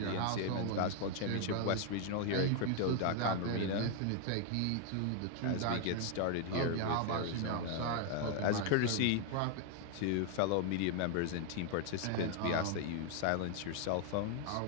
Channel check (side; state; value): both; different; correlation 0.00